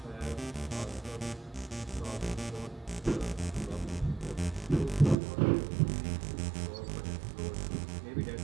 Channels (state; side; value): drops out; left; at 5.2 s